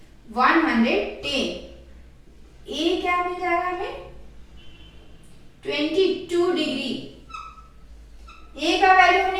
110। a क्या मिल जाएगा हमें, 22 डिग्री। a का वैल्यू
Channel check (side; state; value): both; identical; correlation 1.00